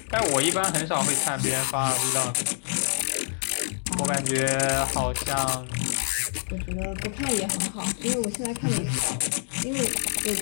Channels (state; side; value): silent; right; digital silence